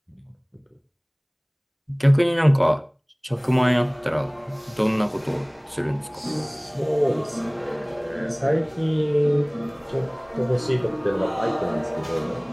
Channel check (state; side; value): identical; both; correlation 1.00